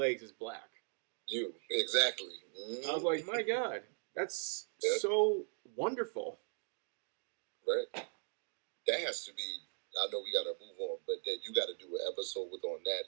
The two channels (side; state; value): left; silent; 52 dB below the other